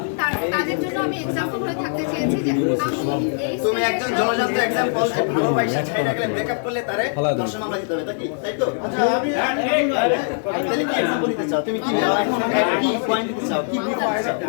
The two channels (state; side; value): silent; right; digital silence